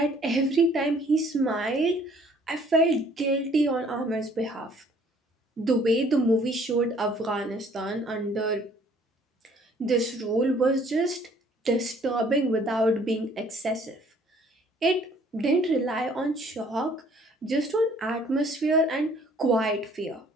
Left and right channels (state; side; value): normal; both; correlation 0.58